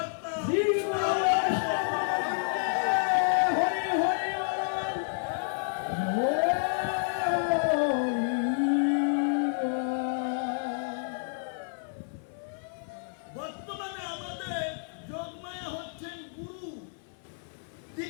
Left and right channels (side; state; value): right; silent; 58 dB below the other